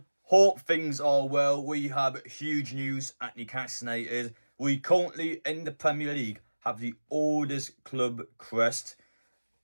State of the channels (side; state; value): both; inverted; correlation -1.00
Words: Hope things are well. We have huge news at Newcastle United. We currently, in the Premier League, have the oldest club crest.